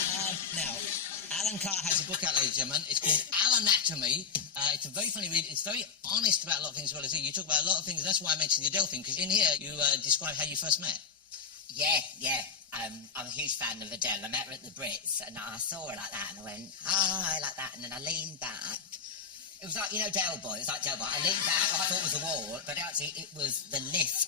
Now, Alan Carr has a book out, ladies and gentlemen. It's called Alanatomy. It's a very funny read. It's very honest about a lot of things as well as you talk about a lot of things. That's why I mentioned the Adele thing, because in here you describe how you first met. Yeah. I'm a huge fan of Adele. I met her at the Brits, and I saw her like that, and I went, hi, like that, and then I leaned back. It was like, Del Boy. It was like Del Boy. I leaned back, what I thought was a wall, but actually it was the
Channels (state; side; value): quieter; right; 6.1 dB